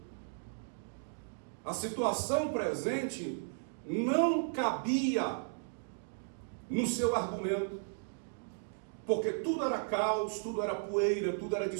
A situação presente não cabia no seu argumento, porque tudo era caos, tudo era poeira, tudo era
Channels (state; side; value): silent; left; digital silence